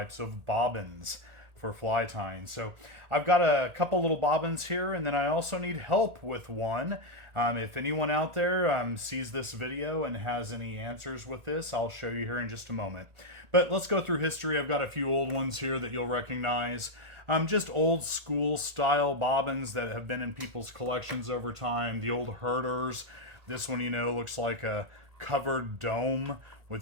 of bobbins for fly tying. So I've got a couple little bobbins here, and then I also need help with one. If anyone out there sees this video and has any answers with this, I'll show you here in just a moment. But let's go through history. I've got a few old ones here that you'll recognize. Just old school style bobbins that have been in people's collections over time. The old herders. This one, looks like a covered dome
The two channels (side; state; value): left; late; 1.8 ms